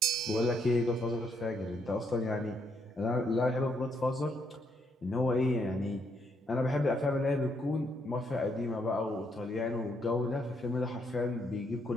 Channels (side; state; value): both; normal; correlation 0.74